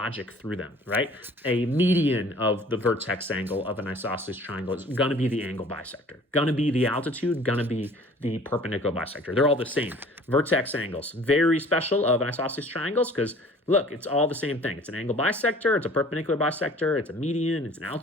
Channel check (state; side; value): normal; both; correlation 0.50